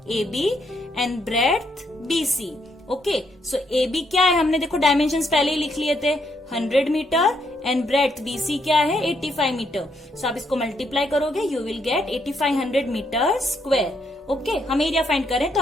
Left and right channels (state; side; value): normal; both; correlation 0.75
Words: AB, and breadth BC। Okay, so AB क्या है, हमने देखो डायमेंशंस पहले ही लिख लिए थे, 100 मीटर, एंड ब्रेड्थ BC क्या है, 85 मीटर। सो आप इसको मल्टीप्लाई करोगे, you will get 8500 metre square. Okay, हम एरिया फाइंड करें तो